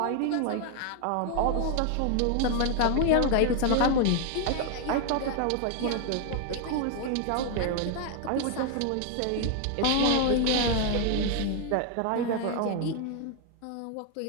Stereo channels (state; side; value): different; both; correlation 0.00